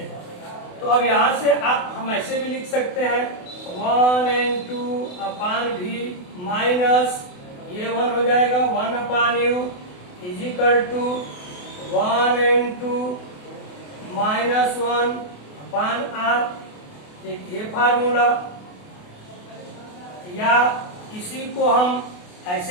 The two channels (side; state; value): right; late; 28 ms